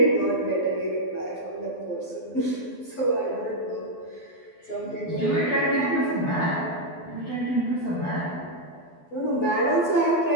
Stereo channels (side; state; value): right; late; 12 ms